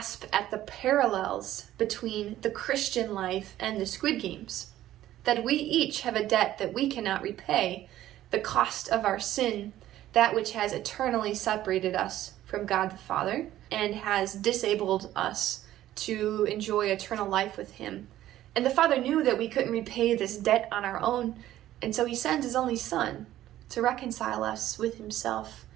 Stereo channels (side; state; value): left; quieter; 13.5 dB